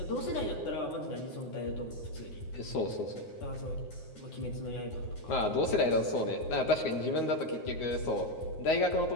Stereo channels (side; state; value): right; late; 9.6 ms